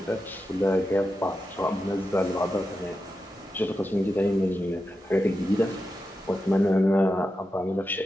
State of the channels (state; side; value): normal; both; correlation 0.89